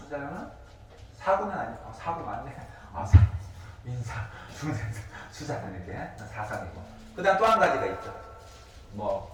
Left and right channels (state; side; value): identical; both; correlation 1.00